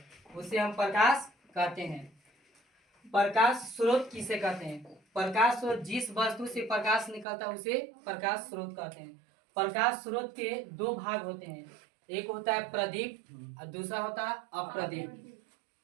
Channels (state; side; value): drops out; left; at 7.2 s